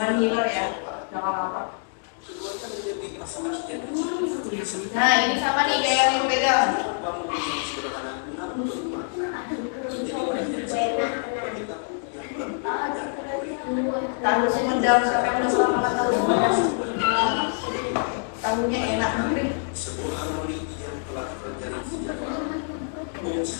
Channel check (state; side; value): silent; right; 61 dB below the other